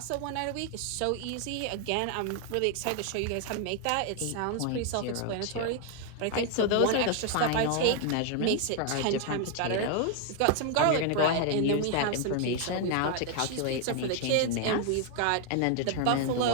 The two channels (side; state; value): both; different; correlation 0.00